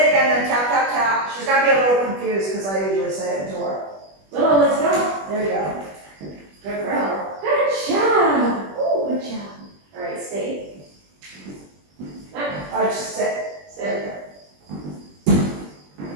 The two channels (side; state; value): left; late; 21 ms